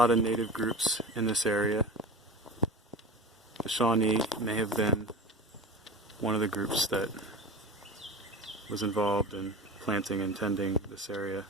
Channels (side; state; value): both; normal; correlation 0.32